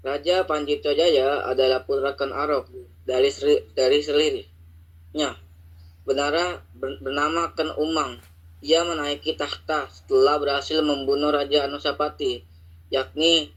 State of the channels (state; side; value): identical; both; correlation 1.00